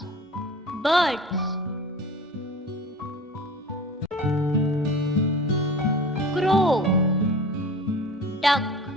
Birds: crow, duck,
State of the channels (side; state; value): both; normal; correlation 0.39